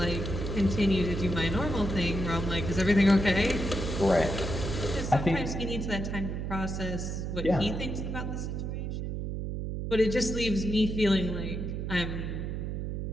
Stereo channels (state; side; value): noise; right; hum, 3 dB below the sound